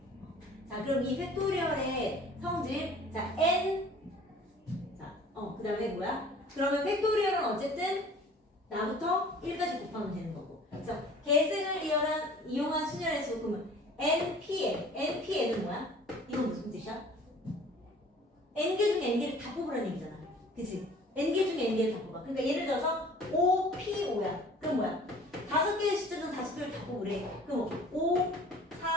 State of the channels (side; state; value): both; normal; correlation 0.49